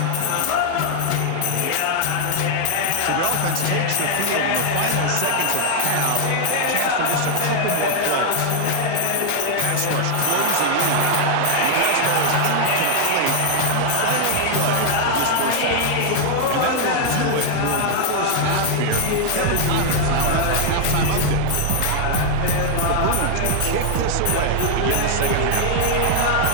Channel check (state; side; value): different; both; correlation 0.00